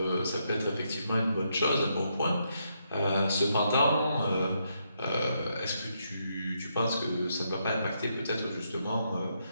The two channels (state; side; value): inverted; both; correlation -0.78